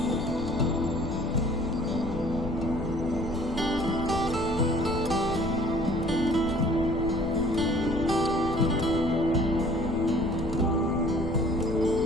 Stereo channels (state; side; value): noise; left; rumble, 9 dB below the sound